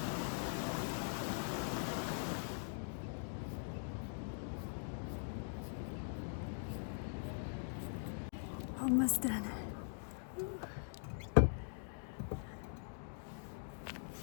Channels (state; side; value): silent; right; digital silence